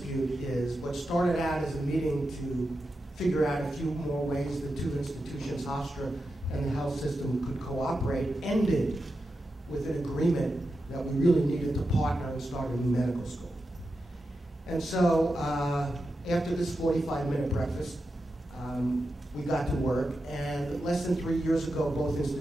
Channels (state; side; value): normal; both; correlation 0.89